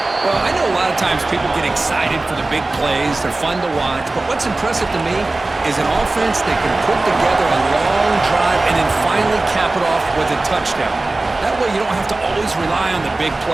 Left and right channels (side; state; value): left; quieter; 3.0 dB